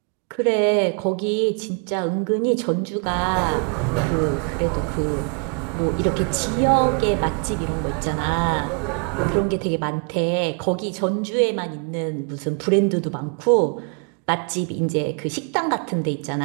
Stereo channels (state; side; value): quieter; left; 37.6 dB